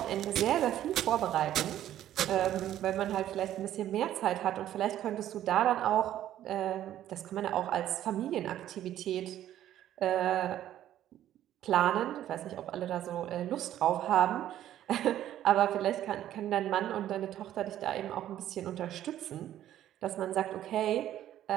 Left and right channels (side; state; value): left; quieter; 12.1 dB